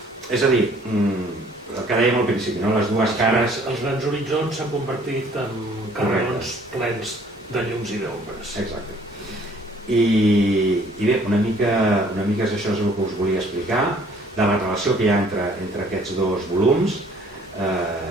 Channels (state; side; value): normal; both; correlation 0.58